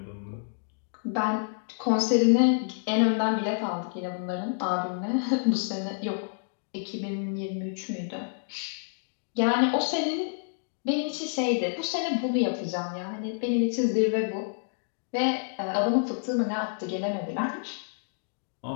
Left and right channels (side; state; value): right; silent; digital silence